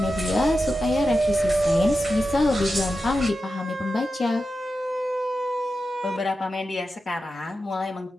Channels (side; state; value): both; normal; correlation 0.91